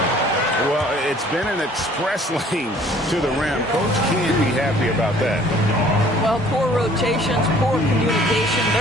Well, it's been an express lane to the rim. Coach can't be happy about that. Well, poor rotations, poor communication.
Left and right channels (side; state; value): both; normal; correlation 0.55